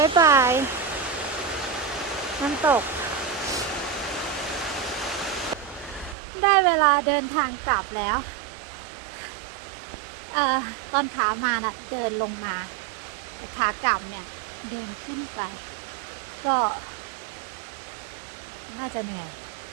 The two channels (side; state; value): left; drops out; at 6.2 s